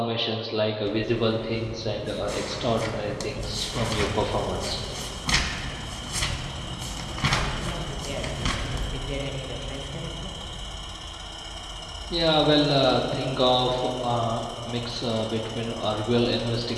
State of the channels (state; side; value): identical; both; correlation 1.00